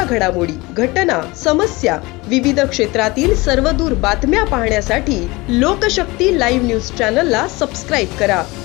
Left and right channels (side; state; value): right; quieter; 22.9 dB